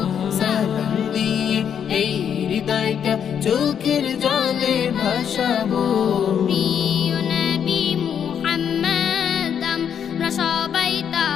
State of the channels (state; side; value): quieter; right; 8.2 dB